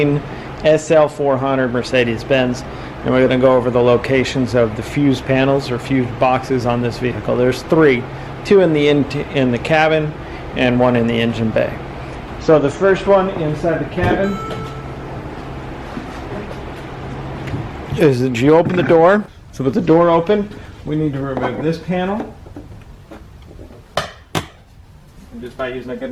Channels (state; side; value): identical; both; correlation 1.00